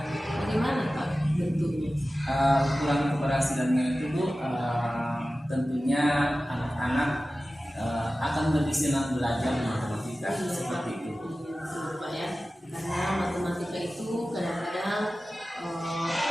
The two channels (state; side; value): normal; both; correlation 0.95